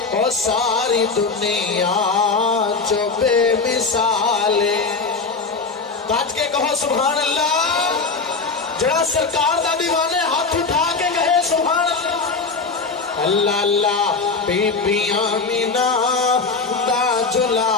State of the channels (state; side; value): quieter; right; 4.4 dB